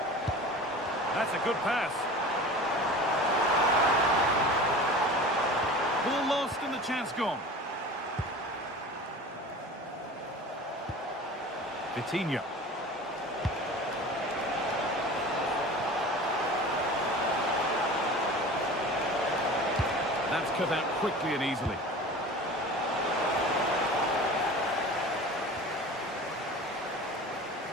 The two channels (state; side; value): normal; both; correlation 0.37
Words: That's a good pass. Ball lost and the chance gone. Vitinha. That's cut out quickly and easily.